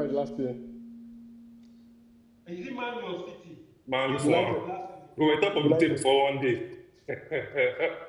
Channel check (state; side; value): identical; both; correlation 1.00